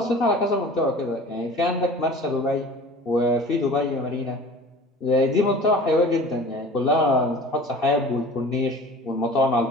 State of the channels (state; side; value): normal; both; correlation 0.42